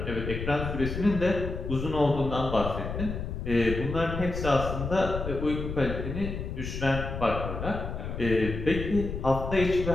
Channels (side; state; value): left; noise; rumble, 5 dB below the sound